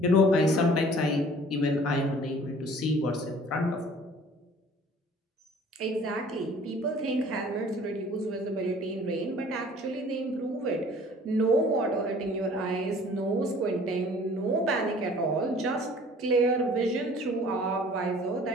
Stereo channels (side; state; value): both; normal; correlation 0.51